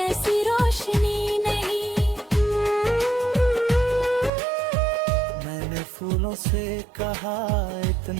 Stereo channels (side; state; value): left; drops out; at 4.3 s